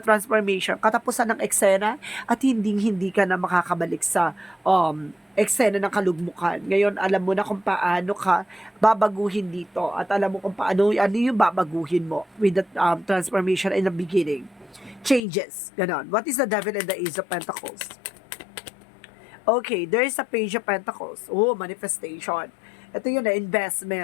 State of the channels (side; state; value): right; drops out; at 15.2 s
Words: katapusan ng eksena at hindi ka na makakabalik sa eksena ng kalugmukan. Ngayon, alam mo na kung paano ka babaguhin dito at alam mo kung paano ano yung babaguhin mo with the transformation in the beginning. Changes. Ganon. What is the devil and the ace of pentacles? Okay, there is a page of pentacles. Oh, manifestation. Ito yun na